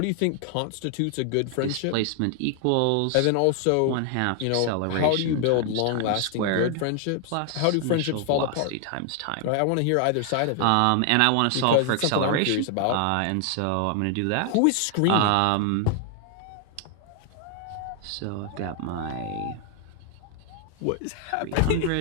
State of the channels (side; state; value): both; different; correlation 0.00